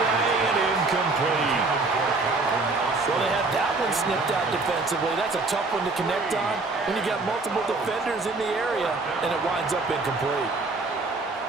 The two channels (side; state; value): left; quieter; 3.5 dB